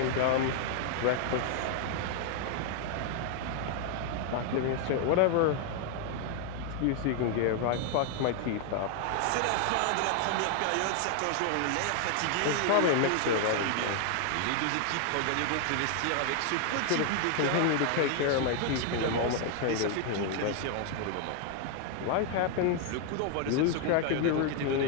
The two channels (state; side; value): different; both; correlation 0.00